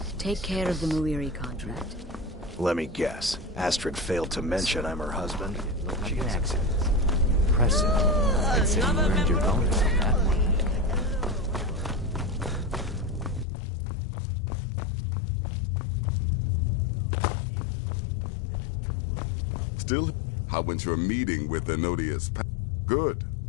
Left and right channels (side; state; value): right; drops out; at 13.5 s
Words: Take care of the Muiri contract. Let me guess. Astrid failed to mention I'm her husband. She has accent. Impressive. I'd say you earned your bonus on that one. Still, how went your meeting with the Nodius? Good.